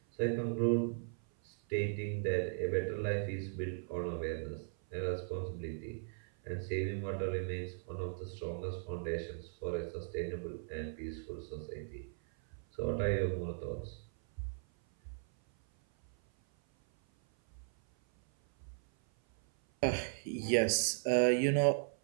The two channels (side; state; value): left; silent; 53 dB below the other